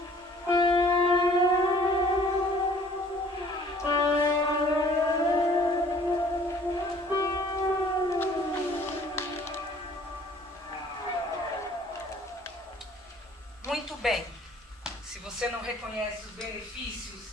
Se você não reconhece os benefícios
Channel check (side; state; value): both; normal; correlation 0.54